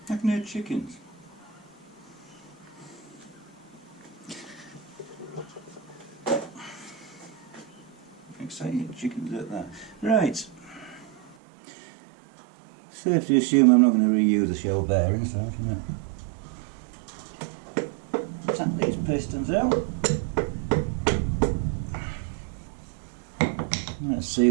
I can hear chickens. Excited chickens at that. Right. Safe to assume I'm not going to reuse the shell bearings, so I'm going to tap these pistons out. Let's see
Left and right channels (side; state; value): left; drops out; at 11.4 s